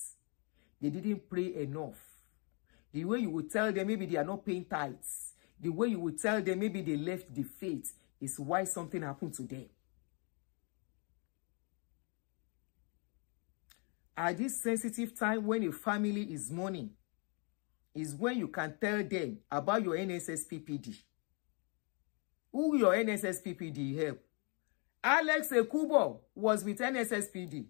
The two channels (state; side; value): quieter; right; 35.1 dB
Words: they didn't pray enough. The way you would tell them maybe they are not paying tithes, the way you would tell them maybe they left the faith is why something happened to them. At this sensitive time when a family is mourning, is when you can tell them about your NSSPPD. Who your NSSPPD help? Alex Ekubo was with NSSPD.